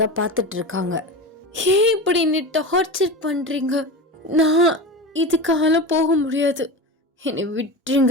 தான் பார்த்துட்ருக்காங்க. ஏன் இப்படி என்னை டார்ச்சர் பண்ணுறீங்க? நான் இதுக்காக போக முடியாது, என்னை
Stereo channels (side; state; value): both; normal; correlation 0.26